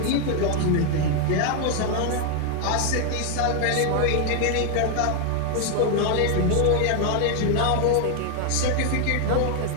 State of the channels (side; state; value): both; different; correlation 0.00